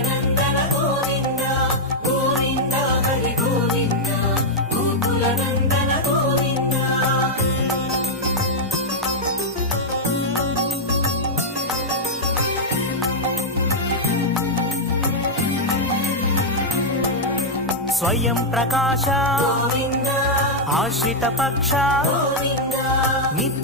నందన గోవింద గోవింద హరి గోవింద గోకుల నందన గోవింద స్వయం ప్రకాశ గోవింద ఆశ్రిత పక్ష గోవింద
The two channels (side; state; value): both; normal; correlation -0.03